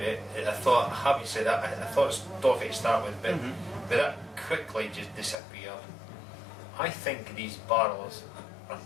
I thought, having said that, I thought it was toffee to start with, but that quickly just disappeared. I think these barrels are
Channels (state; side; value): drops out; right; at 5.4 s